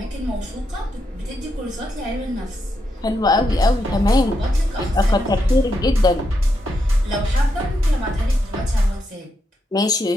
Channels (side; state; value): both; normal; correlation 0.82